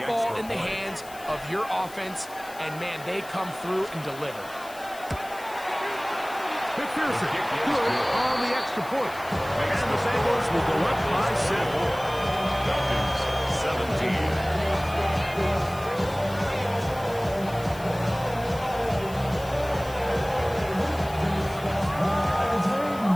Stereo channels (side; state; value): left; noise; hiss, 19 dB below the sound